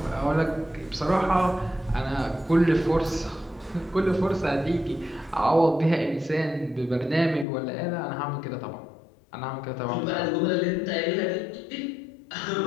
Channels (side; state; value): right; drops out; at 7.5 s